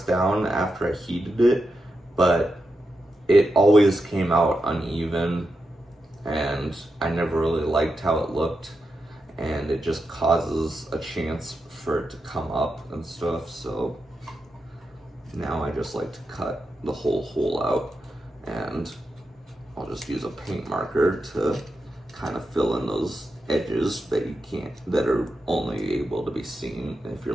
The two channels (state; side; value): normal; both; correlation 0.87